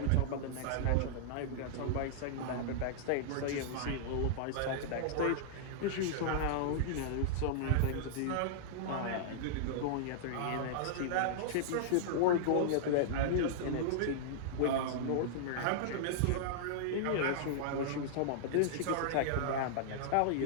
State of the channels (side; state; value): both; different; correlation -0.02